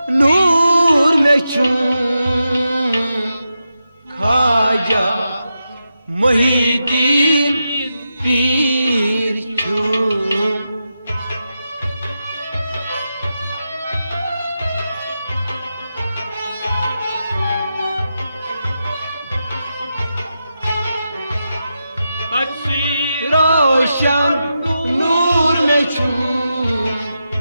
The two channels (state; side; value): inverted; both; correlation -0.88